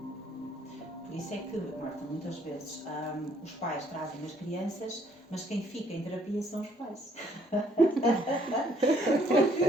Por isso é que, Marta, muitas vezes os pais trazem as crianças, mas quem fica em terapia são os pais.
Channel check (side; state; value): both; normal; correlation 0.65